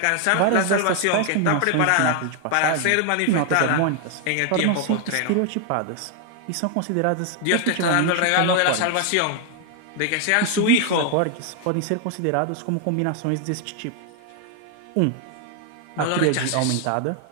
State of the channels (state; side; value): different; both; correlation 0.00